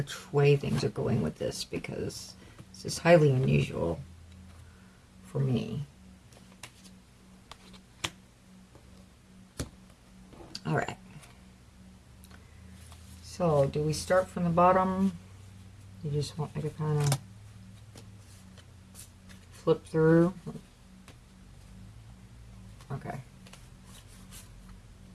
way things are going with this because this is highly unusual for me. All right. So, do we start from the bottom? You just want me to kind of flip through? Okay.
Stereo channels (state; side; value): identical; both; correlation 1.00